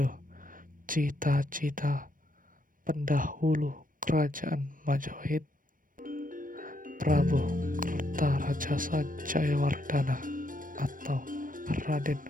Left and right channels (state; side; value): late; left; 0.40 ms